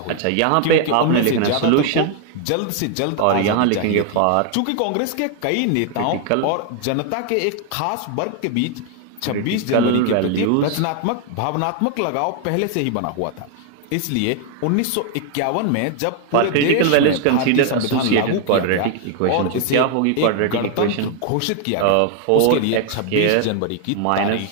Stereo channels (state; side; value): different; both; correlation 0.00